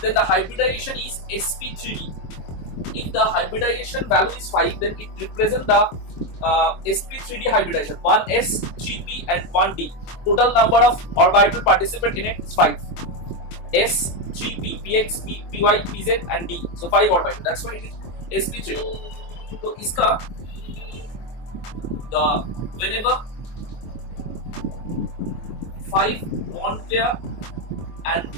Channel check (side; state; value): right; late; 23 ms